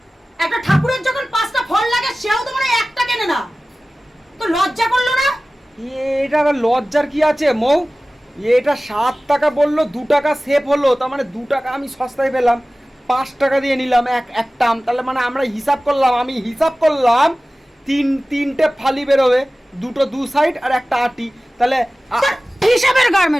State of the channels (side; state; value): both; normal; correlation 0.97